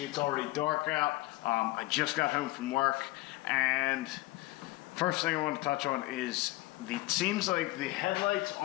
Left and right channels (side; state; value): right; quieter; 19.6 dB